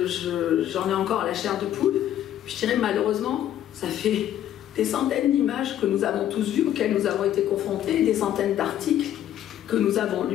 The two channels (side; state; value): right; quieter; 11.5 dB